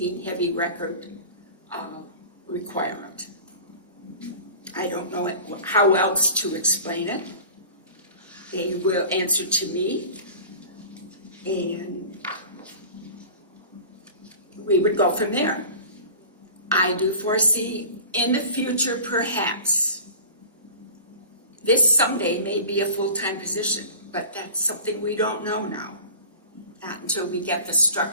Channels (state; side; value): inverted; both; correlation -0.39